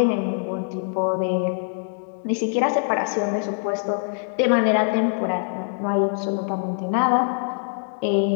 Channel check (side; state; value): right; silent; digital silence